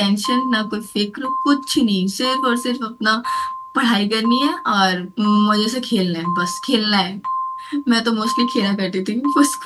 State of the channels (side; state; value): both; identical; correlation 1.00